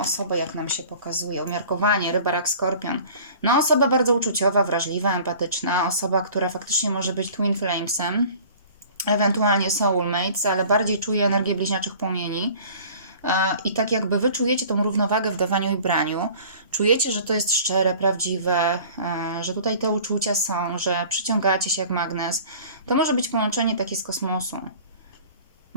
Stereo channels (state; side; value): inverted; both; correlation -0.47